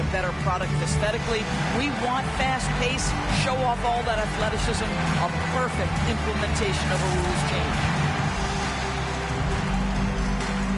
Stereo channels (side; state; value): both; identical; correlation 1.00